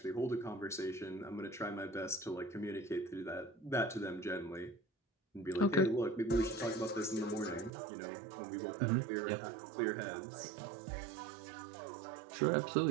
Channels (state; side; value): drops out; left; at 7.7 s